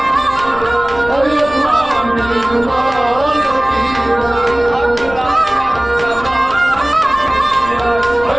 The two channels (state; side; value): noise; left; rumble, 16 dB below the sound